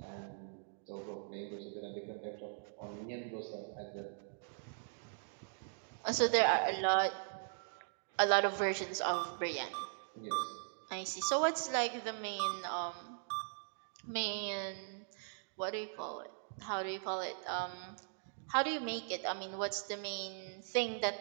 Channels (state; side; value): silent; left; digital silence